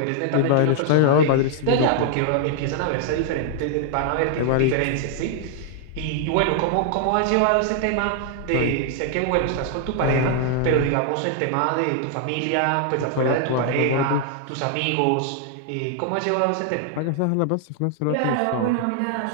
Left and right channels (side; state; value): both; different; correlation 0.00